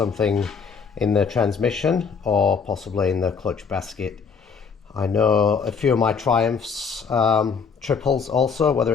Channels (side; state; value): right; quieter; 5.8 dB